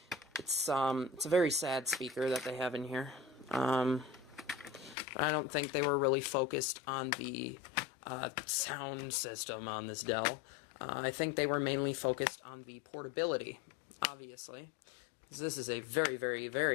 it's a very sad speaker that they have in here. I don't think they were really focused on the sound system on this Dell. I think they were mainly focused on the portability, obviously. This is a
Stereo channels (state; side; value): drops out; right; at 5.0 s